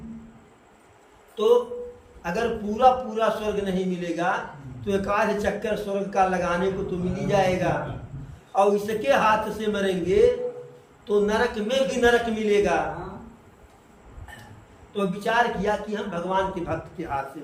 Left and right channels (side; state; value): both; identical; correlation 1.00